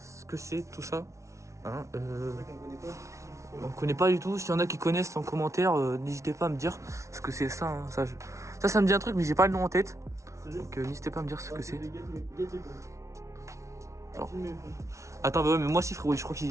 que c'est, tout ça. Hein, C'est vrai qu'on connaît pas. on connaît pas du tout. S'il y en a qui connaissent en commentaire, n'hésitez pas à me dire ce que c'est ça. Hein. Ça me dit un truc, mais j'ai pas le nom en tête. Sérieux? Donc, n'hésitez pas à me dire ce que c'est. Alors. Attends, bah ouais, mais moi si, frérot, je crois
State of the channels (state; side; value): late; left; 0.14 ms